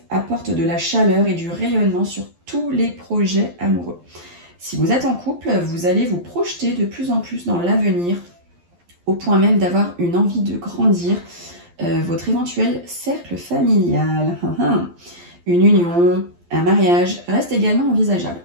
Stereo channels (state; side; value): late; left; 12 ms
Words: apporte de la chaleur et du rayonnement sur tous les projets amoureux. Si vous êtes en couple, vous allez vous projeter de plus en plus dans l'avenir, au point même d'avoir une envie de grandir votre éventuel cercle familial. Une union, un mariage reste également envisageable.